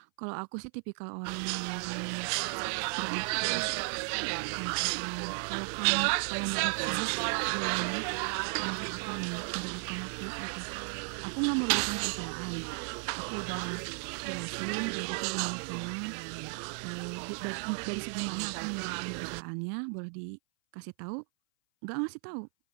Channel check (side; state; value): left; silent; 55 dB below the other